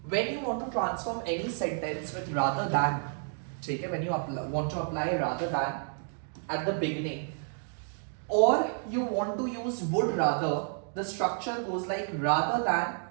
when you want to transform any sentence with rather than, ठीक है, when you want to apply rather than at the beginning, or you want to use would rather, the structure goes like rather than,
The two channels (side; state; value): left; silent; 57 dB below the other